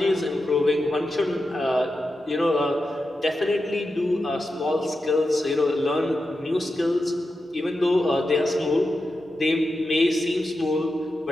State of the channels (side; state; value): both; normal; correlation 0.90